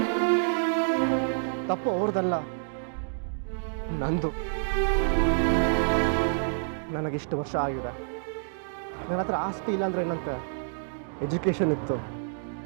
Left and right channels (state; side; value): silent; left; digital silence